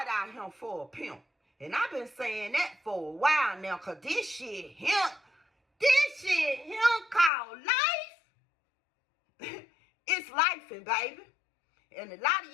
out here for a pimp. And I've been saying that for a while now, because this shit called life. It's lifing, baby. And a lot of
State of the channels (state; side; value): drops out; right; at 7.3 s